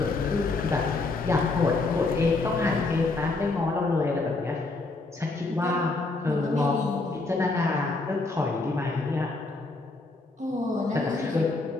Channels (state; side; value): quieter; right; 3.4 dB